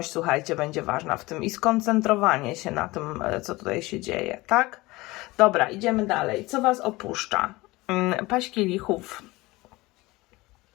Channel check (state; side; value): quieter; right; 20.9 dB